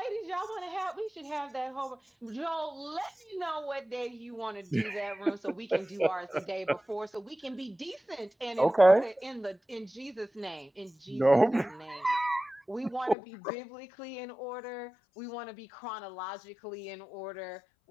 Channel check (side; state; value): right; drops out; at 13.2 s